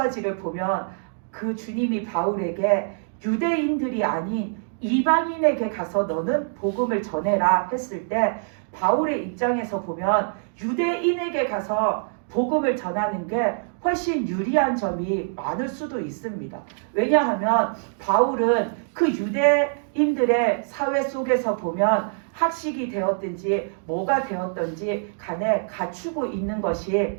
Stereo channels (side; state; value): left; silent; digital silence